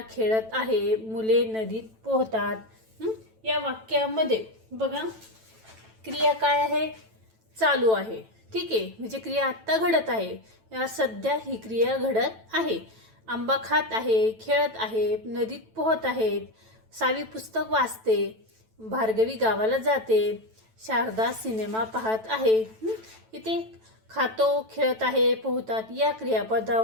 खेळत आहे, मुले नदीत पोहतात. या वाक्यामध्ये बघा, क्रिया काय आहे? चालू आहे. ठीक आहे, म्हणजे क्रिया आत्ता घडत आहे. या सध्या ही क्रिया घडत आहे. आंबा खात आहे, खेळत आहे, नदीत पोहत आहेत. सावी पुस्तक वाचते, भार्गवी गावाला जाते, शारदा सिनेमा पाहत आहे. इथे खातो, खेळत आहे, पोहतात या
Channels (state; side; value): late; left; 9.1 ms